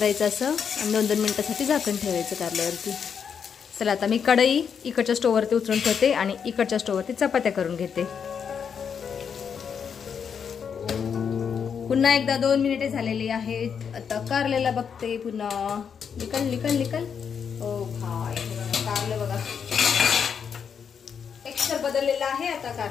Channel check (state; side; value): quieter; right; 7.0 dB